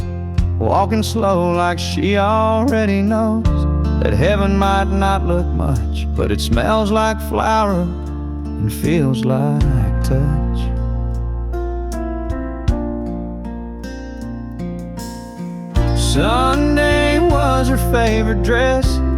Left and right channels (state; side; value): identical; both; correlation 1.00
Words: walking slow like she already knows that heaven might not look much, but it smells like flower and feels like touch. Sunday was her favorite dress,